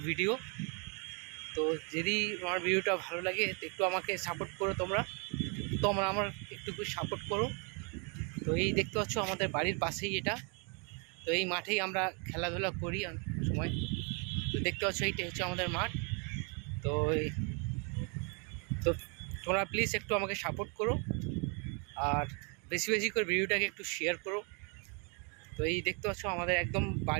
video. তো যদি আমার ভিডিওটা ভালো লাগে তো একটু আমাকে সাপোর্ট করো তোমরা আমার একটু সাপোর্ট করো। তো এই দেখতে পাচ্ছ আমাদের বাড়ির পাশেই এটা। তো এই মাঠেই আমরা খেলাধুলা করি সময়। তো দেখতে পাচ্ছ এইটা হচ্ছে আমাদের মাঠ। তো তো তোমরা প্লিজ একটু আমাকে সাপোর্ট করো আর বেশি বেশি করে ভিডিওটাকে একটু শেয়ার করো। তো এই দেখতে পাচ্ছ আমাদের একদম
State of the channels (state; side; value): quieter; left; 35.5 dB